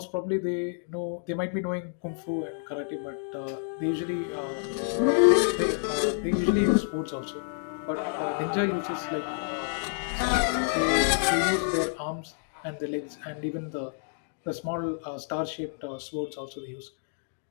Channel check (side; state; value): right; silent; digital silence